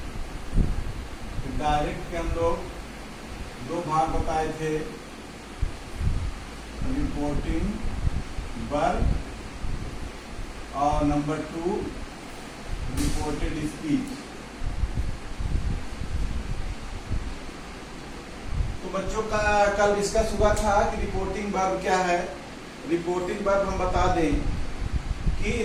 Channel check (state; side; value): identical; both; correlation 1.00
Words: डायरेक्ट के हम लोग दो भाग बताए थे, रिपोर्टिंग वर्ब और नंबर 2 रिपोर्टेड स्पीच। तो बच्चों का कल डिस्कस हुआ था कि रिपोर्टिंग वर्ब क्या है। रिपोर्टिंग वर्ब हम बता दें कि